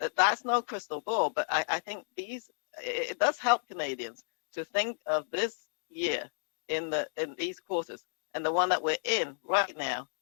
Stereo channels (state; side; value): silent; right; digital silence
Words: That's no crystal ball, but I think it does help Canadians to think of this year in these quarters and the one that we're in right now